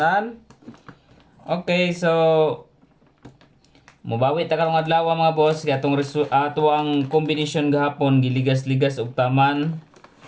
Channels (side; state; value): both; identical; correlation 1.00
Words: Okay, so mubawi ta karong adlaw mga boss kay atong tuang combination gahapon giligas-ligas og taman.